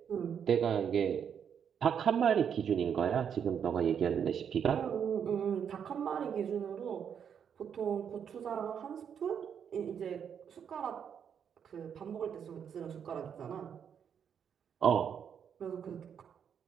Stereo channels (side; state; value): left; quieter; 7.9 dB